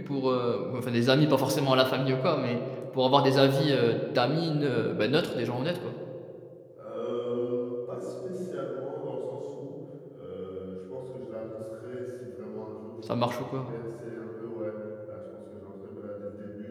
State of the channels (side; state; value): both; identical; correlation 1.00